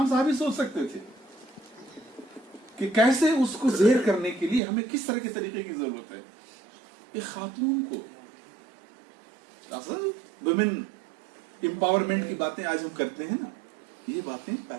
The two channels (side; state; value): left; drops out; at 4.6 s